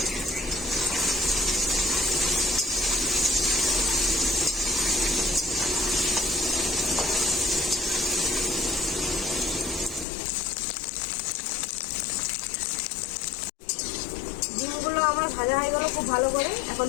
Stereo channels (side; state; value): right; drops out; at 10.1 s